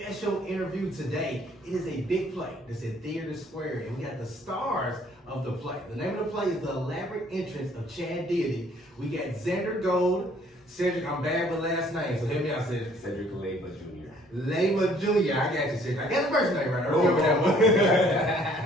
interview today. It is a big play. It's at Theater Square, and we got the stars of the play. The name of the play is The Elaborate Entrance of Chad Deity. We got Xander Gold, Cedric. I'm bad with last name, so help me out, Cedric. Cedric Leyva Jr. Leyva Jr. I got you, Cedric. I got the first name right. I remember that one.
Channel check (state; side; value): normal; both; correlation 0.60